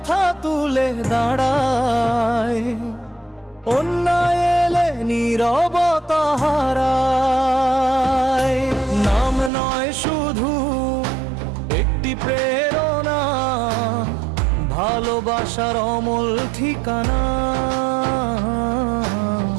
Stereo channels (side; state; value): left; drops out; at 9.5 s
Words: তুলে দাঁড়ায়, অন্যায় এলে নীরবতা হারায়। নাম নয় শুধু একটি প্রেরণা, ভালোবাসার অমল ঠিকানা।